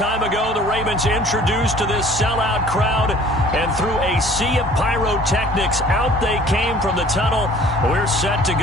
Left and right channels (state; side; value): normal; both; correlation 0.51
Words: ago. The Ravens introduced to this sellout crowd, and through a sea of pyrotechnics, out they came from the tunnel. We're set to